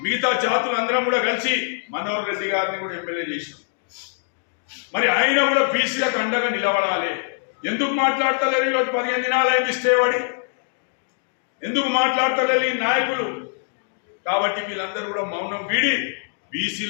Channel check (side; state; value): right; silent; digital silence